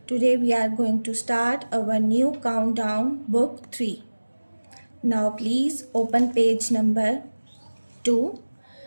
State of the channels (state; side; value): inverted; both; correlation -1.00